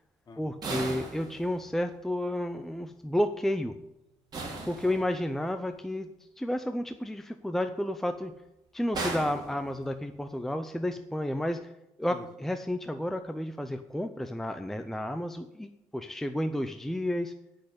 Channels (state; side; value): normal; both; correlation 0.91